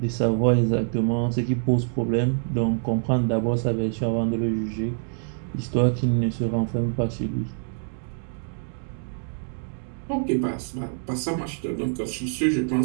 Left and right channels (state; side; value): silent; left; digital silence